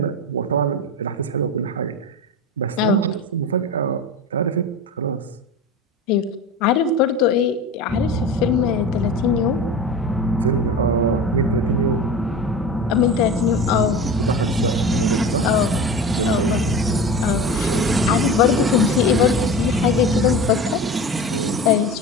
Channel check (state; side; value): normal; both; correlation 0.31